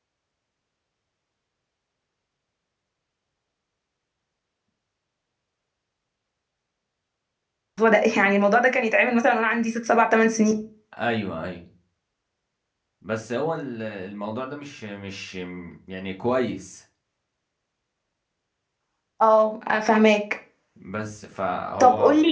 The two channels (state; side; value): identical; both; correlation 1.00